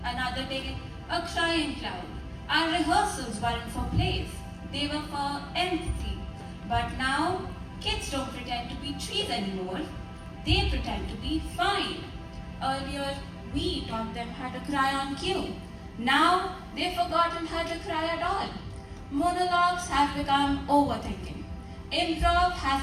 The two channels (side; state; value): both; identical; correlation 1.00